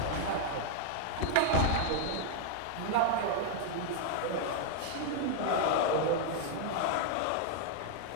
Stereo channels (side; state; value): both; different; correlation 0.00